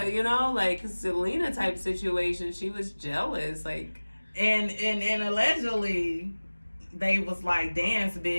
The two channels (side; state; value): both; inverted; correlation -1.00